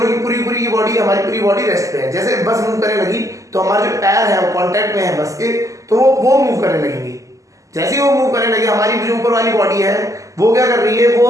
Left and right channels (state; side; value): late; left; 0.16 ms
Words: की पूरी की बॉडी, हमारी पूरी बॉडी रेस्ट पे है। जैसे बस मूव करने लगी तो हमारे जो पैर है वो कांटेक्ट में है बस के, तो वो मूव करने लगेंगी। जैसे ही वो मूव करने लगे, हमारी जो ऊपर वाली बॉडी है वो क्या कर रही है,